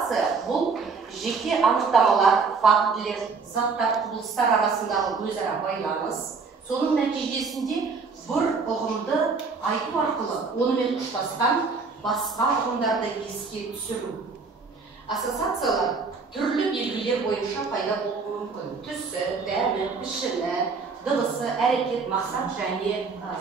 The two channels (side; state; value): left; quieter; 4.7 dB